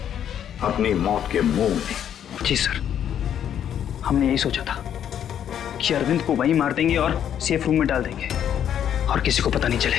अपनी मौत के मुंह में। जी सर, हमने यही सोचा था कि अरविंद को वहीं मार देंगे और सेफ रूम में डाल देंगे और किसी को पता नहीं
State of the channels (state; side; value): quieter; right; 9.5 dB